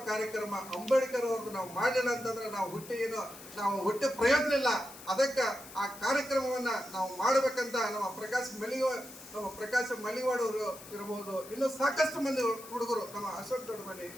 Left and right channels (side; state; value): left; noise; hiss, 16 dB below the sound